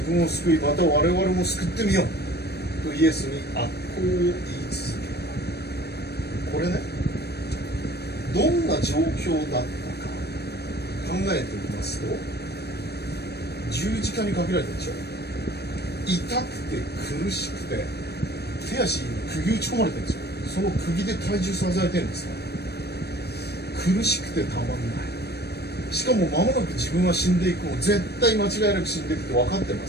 分を救いまた我々も救ってみようとイエスに悪行を言い続けた。これね、どんな状況だったか考えてみますと、十字架にかけられたでしょ。痛くて苦しくて手足に釘打ち込まれてるんですよ。その釘で体重支えてるんですから、苦しくてたまんない。しかも間もなく自分は死んでいくの、絶対間違いなく死んでいくって分かってま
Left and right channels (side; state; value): right; late; 0.47 ms